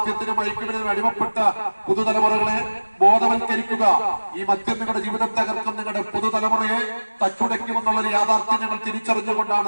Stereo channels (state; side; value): inverted; both; correlation -1.00